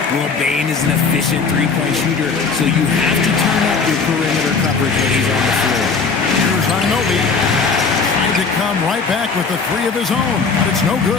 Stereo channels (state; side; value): quieter; right; 4.9 dB